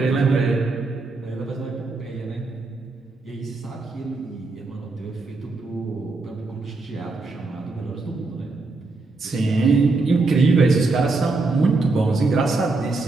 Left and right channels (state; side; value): quieter; left; 3.6 dB